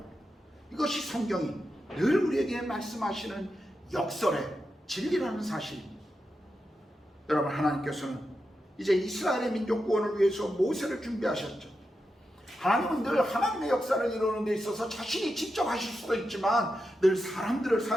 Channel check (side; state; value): both; normal; correlation 0.88